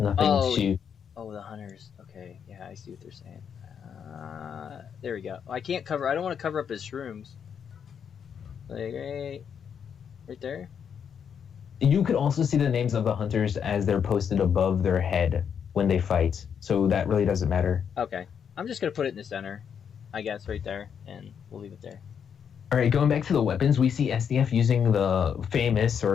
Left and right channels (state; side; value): quieter; right; 7.6 dB